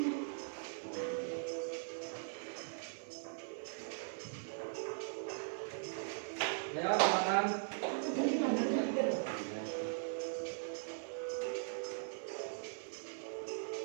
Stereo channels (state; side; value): silent; left; 51 dB below the other